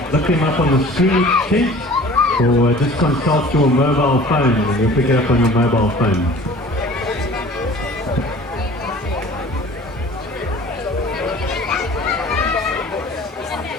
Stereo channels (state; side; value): normal; both; correlation 0.46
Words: look them up on the screen sheet or just consult your mobile phone and you'll pick it up on your mobile phone.